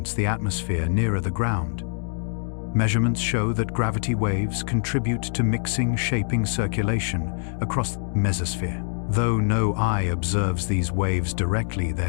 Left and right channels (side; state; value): right; silent; digital silence